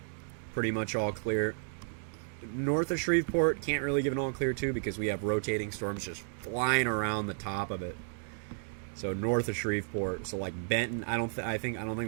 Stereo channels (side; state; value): left; silent; 56 dB below the other